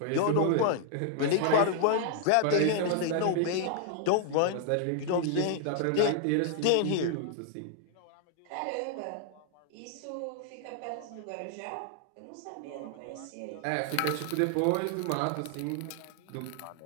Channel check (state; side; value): different; both; correlation 0.00